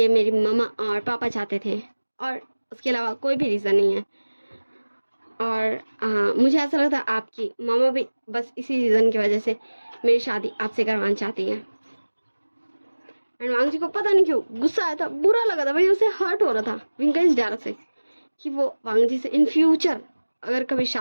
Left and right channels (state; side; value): inverted; both; correlation -1.00